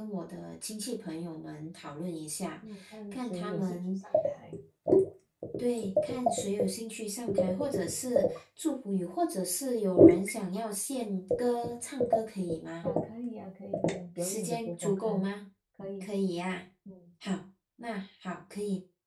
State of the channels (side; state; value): both; identical; correlation 1.00